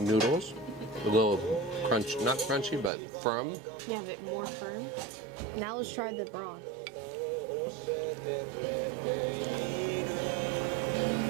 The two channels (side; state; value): left; drops out; at 2.9 s